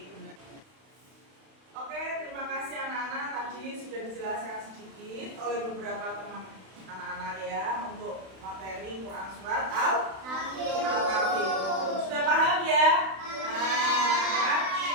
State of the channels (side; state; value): left; late; 31 ms